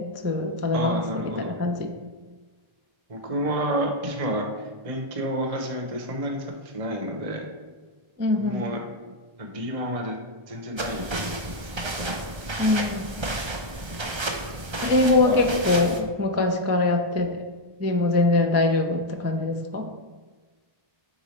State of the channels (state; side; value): late; left; 1.3 ms